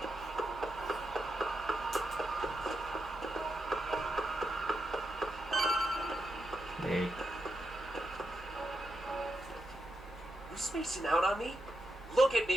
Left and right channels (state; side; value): normal; both; correlation 0.85